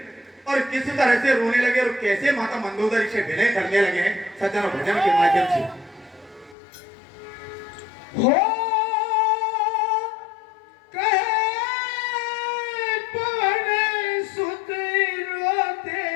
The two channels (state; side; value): drops out; right; at 6.6 s